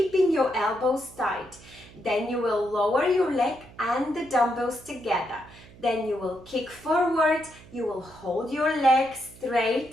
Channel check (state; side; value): noise; right; hum, 22 dB below the sound